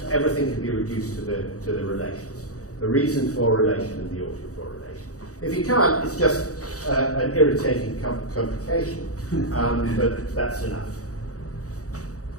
everything can be reduced to the relations. The reason for relation and the oughted for relation. If you can't, it's just an irritating complication, but that's enough.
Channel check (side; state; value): right; late; 0.66 ms